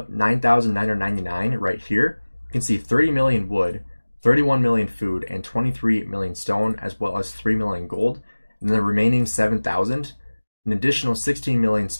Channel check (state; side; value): inverted; both; correlation -1.00